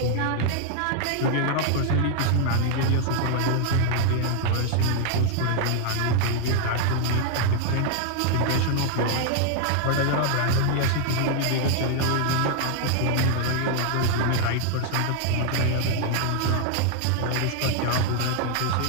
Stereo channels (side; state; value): both; different; correlation 0.00